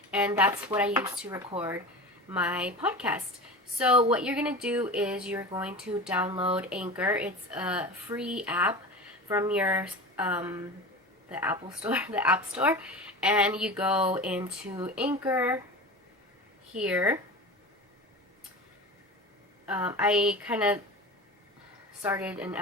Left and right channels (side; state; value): both; normal; correlation 0.31